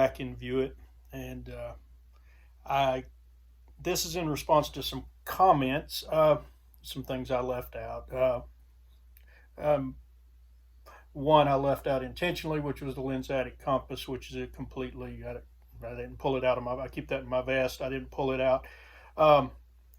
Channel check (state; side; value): identical; both; correlation 1.00